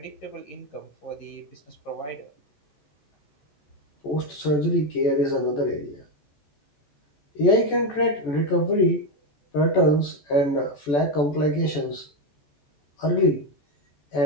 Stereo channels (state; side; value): late; right; 14 ms